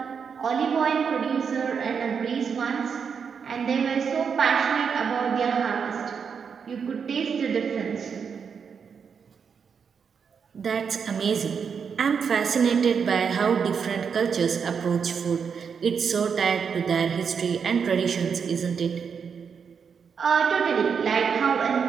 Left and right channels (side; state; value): left; quieter; 6.4 dB